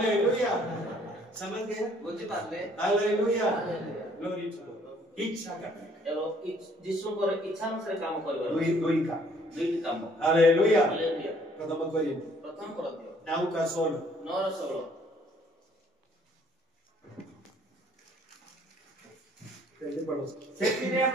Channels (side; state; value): both; normal; correlation 0.61